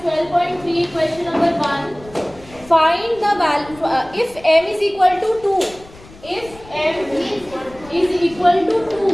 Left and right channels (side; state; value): left; noise; rumble, 21 dB below the sound